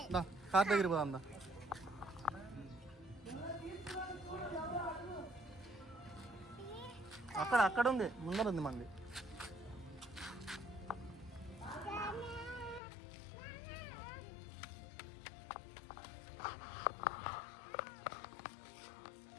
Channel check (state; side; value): drops out; right; at 12.8 s